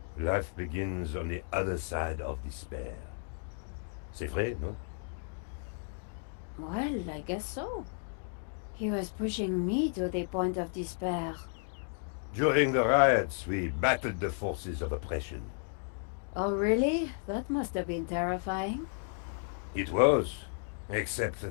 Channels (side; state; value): right; silent; 55 dB below the other